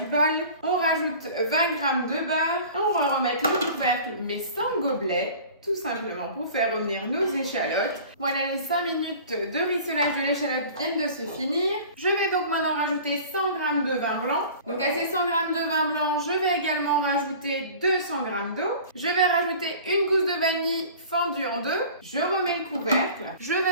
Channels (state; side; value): inverted; both; correlation -0.43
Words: bol. On rajoute 20 g de beurre. On va remettre le couvercle mais sans gobelet. tout simplement pour faire revenir nos échalotes. Voilà, les 5 minutes de rissolage de l'échalote viennent de se finir. Je vais donc maintenant rajouter 100 g de vin blanc. Donc à ces 100 g de vin blanc, je vais également rajouter 200 g d'eau. Je vais rajouter une gousse de vanille fendue en deux. Je remets le couvercle. Je